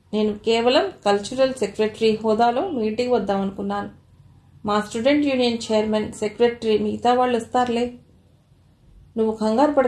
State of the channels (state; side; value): identical; both; correlation 1.00